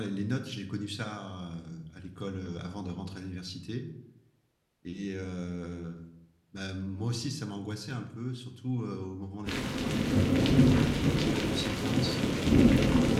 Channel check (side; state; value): both; identical; correlation 1.00